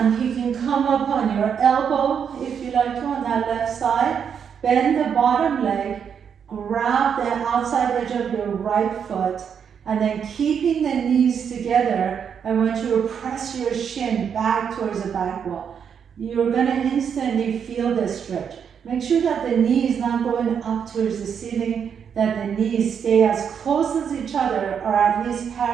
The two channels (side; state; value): left; quieter; 7.5 dB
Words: You can come up on your elbow if you like to on that left side. Bend the bottom leg, grab the outside edge of your right foot, and then keeping the knees together. I want you to press your shin back towards the back wall. You're going to instantly feel the stretch. Make sure that the knee is not going up towards the ceiling, that the knees stay as close as each other or at least